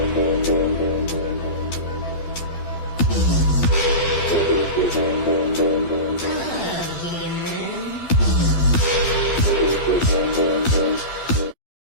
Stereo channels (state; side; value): late; right; 12 ms